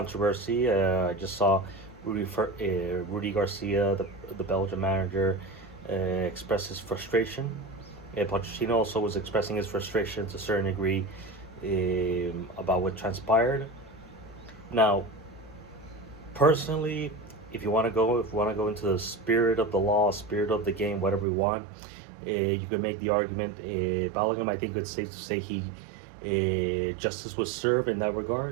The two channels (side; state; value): left; drops out; at 21.2 s